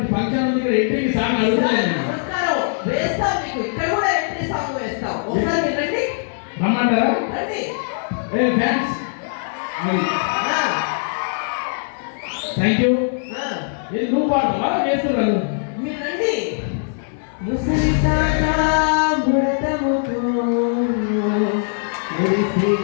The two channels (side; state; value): right; silent; 59 dB below the other